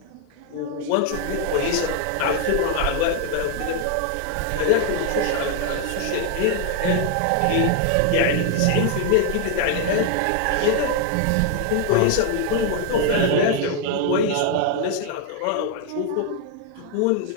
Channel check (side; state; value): both; different; correlation 0.00